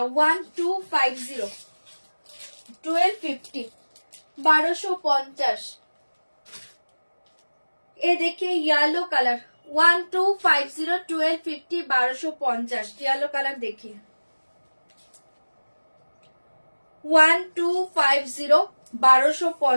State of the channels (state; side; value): inverted; both; correlation -1.00